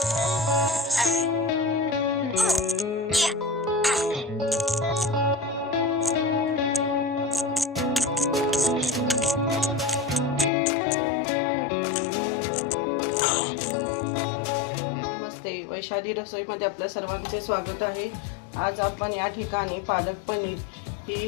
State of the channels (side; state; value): right; drops out; at 10.5 s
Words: वैशाली रसोईमध्ये आपल्या सर्वांचे स्वागत आहे। आज आपण या ठिकाणी पालक पनीर